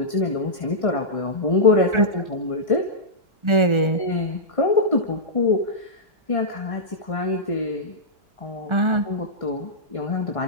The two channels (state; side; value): late; left; 1.4 ms